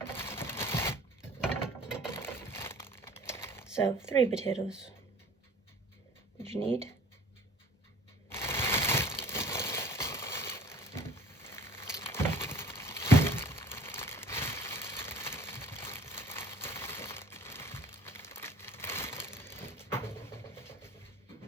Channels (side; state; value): both; normal; correlation 0.49